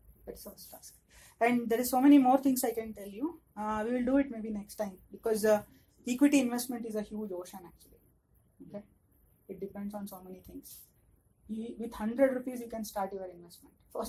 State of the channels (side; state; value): both; identical; correlation 1.00